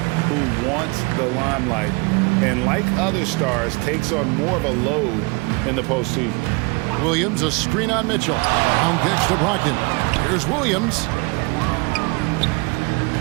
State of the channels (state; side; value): quieter; left; 28.6 dB